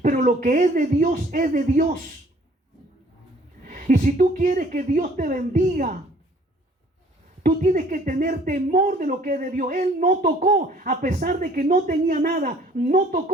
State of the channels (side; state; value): both; normal; correlation 0.57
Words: Pero lo que es de Dios es de Dios. Y si tú quieres que Dios te bendiga, tú tienes que tener temor de lo que es de Dios. Él no tocó, a pesar de que no tenía nada, no